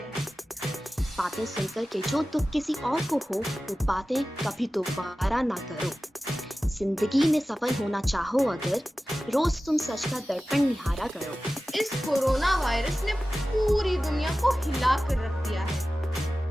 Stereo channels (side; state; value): both; normal; correlation 0.95